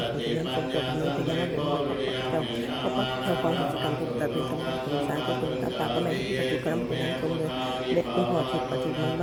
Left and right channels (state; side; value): identical; both; correlation 1.00